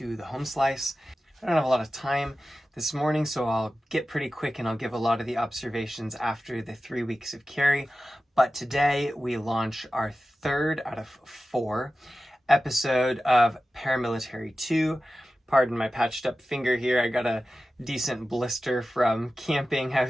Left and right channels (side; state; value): both; normal; correlation 0.94